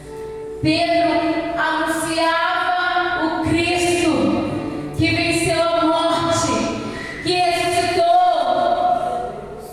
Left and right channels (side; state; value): both; identical; correlation 1.00